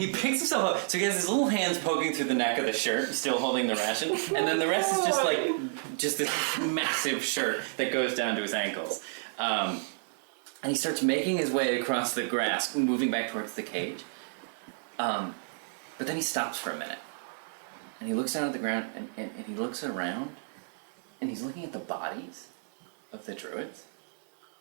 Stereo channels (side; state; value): left; silent; digital silence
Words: himself up, so he has his little hands poking through the neck of the shirt, still holding the ration, and then the rest is just this massive shirt that goes down to his ankles. And he starts making his way across the grass, moving back towards the cage. But then he stops for a minute, and he looks down at the ground, and he looks around, and he's looking at the bodies of the druids.